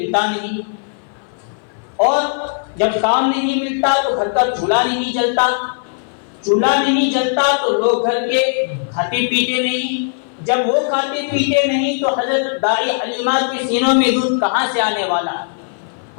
نہیں، اور جب کام نہیں ملتا تو گھر کا چولہا نہیں جلتا، چولہا نہیں جلتا تو لوگ گھر کے کھاتے پیتے نہیں، جب وہ کھاتے پیتے نہیں تو حضرت دائی حلیمہ کے سینوں میں دودھ کہاں سے آنے والا،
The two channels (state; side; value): silent; right; 58 dB below the other